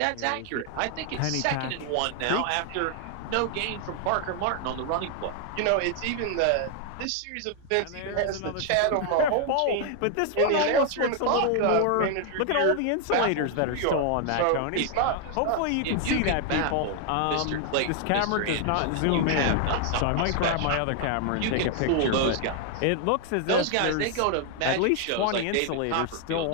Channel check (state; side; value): different; both; correlation 0.00